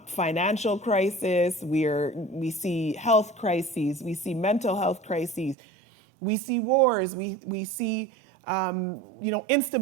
crisis. We see health crises. We see mental health crises. We see wars. We see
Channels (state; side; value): drops out; left; at 5.6 s